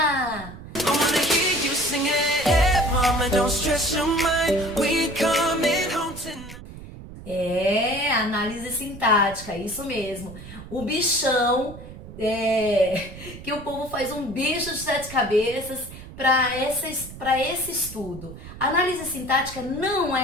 Análise sintática, isso mesmo. O bichão, que o povo faz um bicho de sete cabeças para esse estudo. A análise sintática não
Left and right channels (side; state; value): right; noise; rumble, 14 dB below the sound